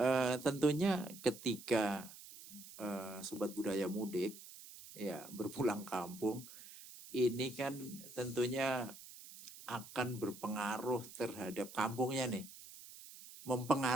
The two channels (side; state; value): right; noise; hiss, 16 dB below the sound